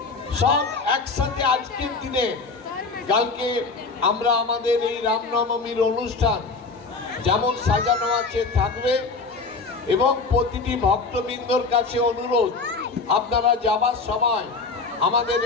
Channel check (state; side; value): quieter; right; 4.1 dB